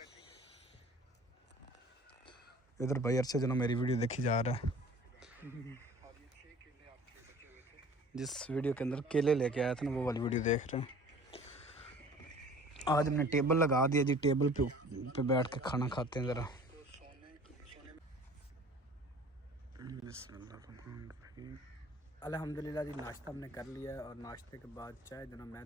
इधर भाई अरशद जो ना मेरी वीडियो देखी जा रहा है, जिस वीडियो के अंदर केले लेके आया था ना वो वाली वीडियो देख रहे हैं। आज हमने टेबल लगा दिया जी, टेबल पे बैठ के खाना खाते हैं ज़रा। अल्हम्दुलिल्लाह जी, नाश्ता हमने कर लिया है और नाश्ते के बाद चाय जो ना मैं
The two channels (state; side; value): normal; both; correlation 0.47